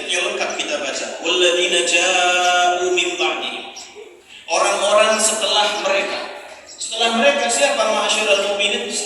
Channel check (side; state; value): both; identical; correlation 1.00